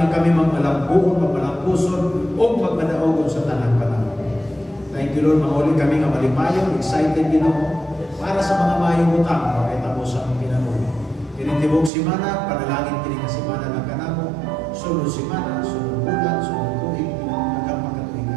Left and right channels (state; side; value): drops out; left; at 11.9 s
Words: nga kami magmalambuon, magmalampuson, o magmadaogon sa tanang panahon. Thank you, Lord, mahuli kami nga malipayon, excited, Ginoo, para sa mga mayong utang, makita mo sa aming pinabuhi. Kinitibog simana, panalangin kini nga simana ng kanamo, sunod simana, sunod bulan, sunod tuig, hanggang